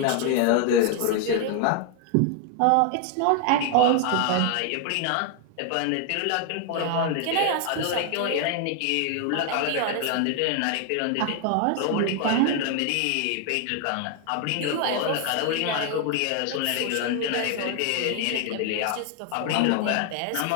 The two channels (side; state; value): both; different; correlation 0.00